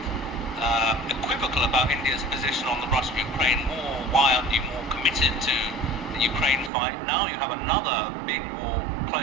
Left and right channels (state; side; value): drops out; left; at 6.7 s